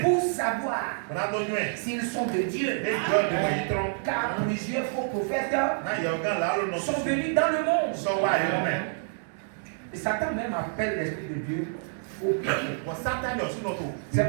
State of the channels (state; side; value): silent; left; digital silence